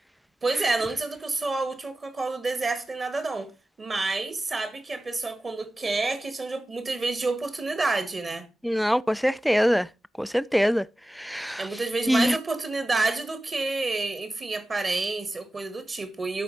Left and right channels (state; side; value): normal; both; correlation 0.95